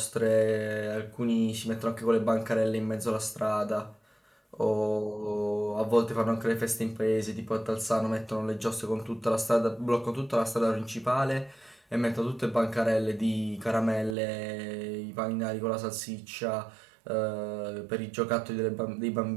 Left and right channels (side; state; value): left; drops out; at 14.2 s